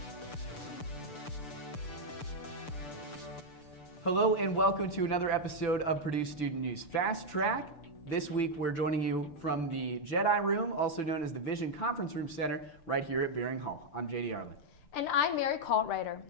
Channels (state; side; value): late; right; 6.8 ms